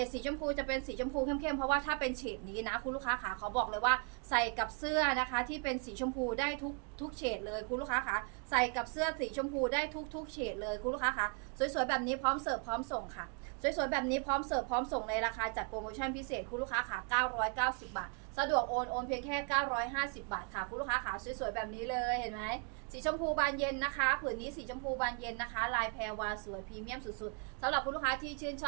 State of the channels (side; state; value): left; quieter; 38.2 dB